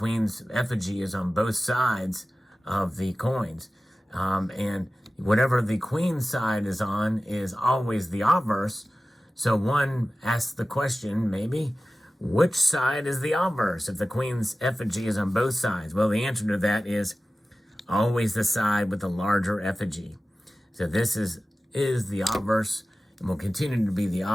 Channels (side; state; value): both; normal; correlation 0.96